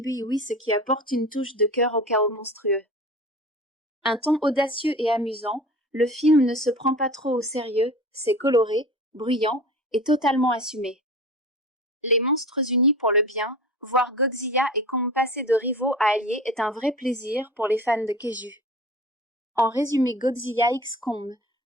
Iwi, ce qui apporte une touche de cœur au chaos monstrueux. Un ton audacieux et amusant, le film ne se prend pas trop au sérieux, c'est coloré, bruyant et totalement assumé. Les monstres unis pour le bien, voir Godzilla et Kong passer de rivaux à alliés est un vrai plaisir pour les fans de Kaiju. En résumé, Godzilla x Kong,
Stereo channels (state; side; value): normal; both; correlation 0.36